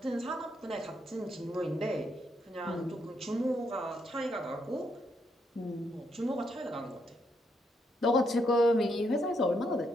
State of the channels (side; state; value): both; normal; correlation 0.77